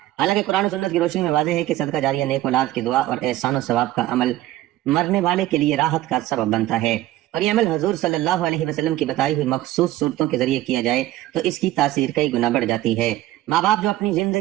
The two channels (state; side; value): quieter; left; 15.2 dB